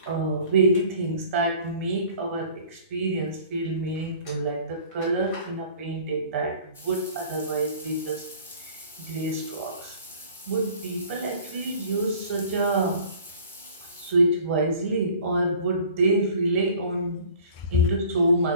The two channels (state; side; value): inverted; both; correlation -0.49